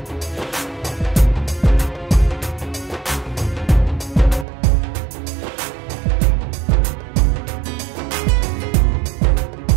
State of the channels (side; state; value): left; drops out; at 4.5 s